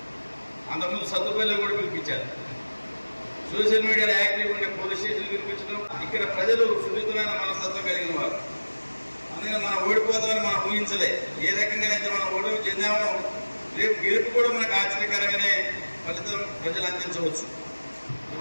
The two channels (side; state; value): both; inverted; correlation -1.00